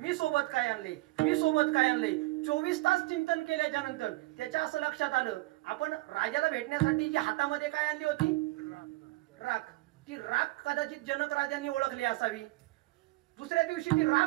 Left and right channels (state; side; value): quieter; left; 21.3 dB